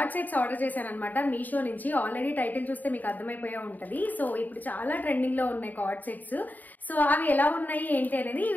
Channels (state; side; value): late; right; 0.084 ms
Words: సెట్స్ ఆర్డర్ చేశాను అనమాట మీషో నుంచి. ఆల్రెడీ టైటిల్ చూస్తే మీకు అర్థమైపోయా ఉంటది. సో ఇప్పుడు చాలా ట్రెండింగ్ లో ఉన్నాయి కార్డ్ సెట్స్. సో అవి ఎలా ఉన్నాయి ఏంటి అనేది ఈ